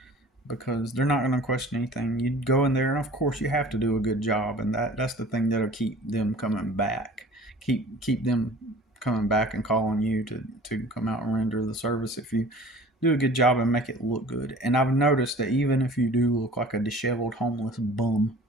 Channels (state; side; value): normal; both; correlation 0.45